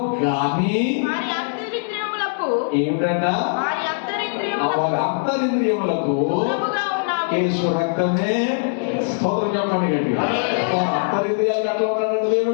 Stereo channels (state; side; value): silent; right; 65 dB below the other